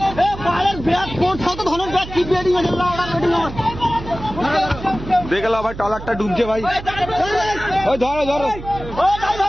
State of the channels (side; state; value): right; noise; hum, 12 dB below the sound